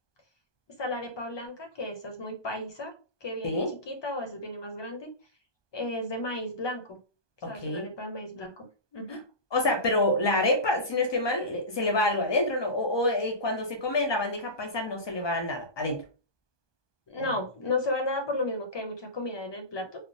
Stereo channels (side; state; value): right; late; 1.2 ms